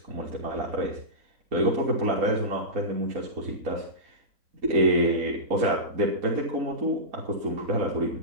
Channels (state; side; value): late; left; 3.7 ms